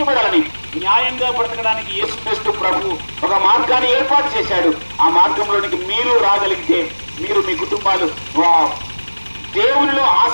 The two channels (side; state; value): both; inverted; correlation -1.00